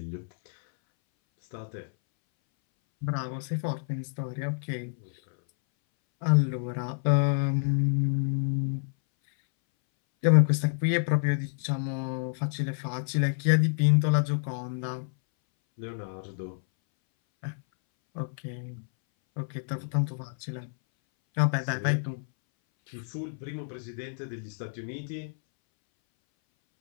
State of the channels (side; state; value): right; silent; 59 dB below the other